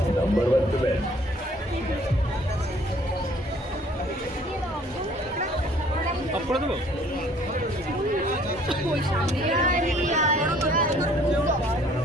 number 1 cement. Up করে দেবো?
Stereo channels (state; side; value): normal; both; correlation 0.57